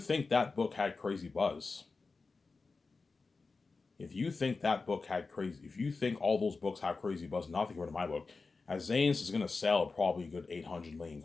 that book had crazy buzz, If you think that book had crazy, if you think all those books have crazy buzz, nothing compared to my book, as Zane's is gonna sell probably a good 800 million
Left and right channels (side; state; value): right; quieter; 4.1 dB